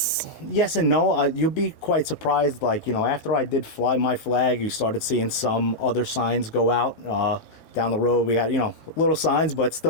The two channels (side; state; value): right; late; 17 ms